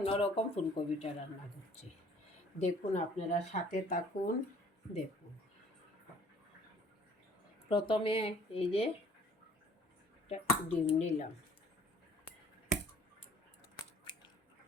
ফুলকপিটা রান্না করছি। দেখুন, আপনারা সাথে থাকুন। দেখুন, প্রথমে এই যে ডিম নিলাম,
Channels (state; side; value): normal; both; correlation 0.56